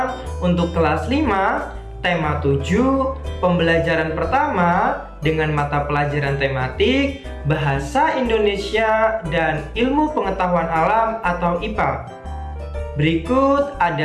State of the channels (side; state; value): both; identical; correlation 1.00